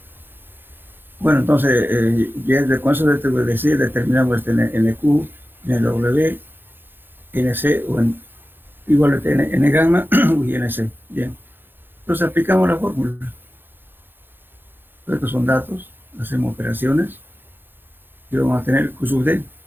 Bueno, entonces, ya con eso determinamos este NQ, NW, NC, o igual a N gamma y NC. Bien. Entonces aplicamos la fórmula. Estos son datos, hacemos operaciones y vamos a tener Q sub D.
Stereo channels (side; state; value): left; late; 0.099 ms